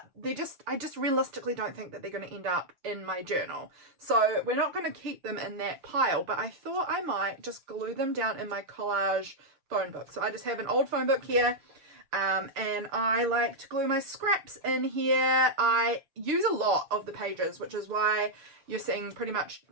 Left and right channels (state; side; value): late; left; 6.7 ms